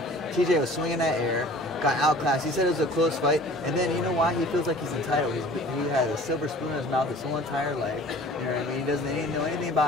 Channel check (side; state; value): both; normal; correlation 0.47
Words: TJ was swinging that air, got outclassed. He said it was a close fight, and then you know why? He feels like he's entitled. He had a silver spoon in his mouth his whole entire life. You know what I mean? He doesn't know anything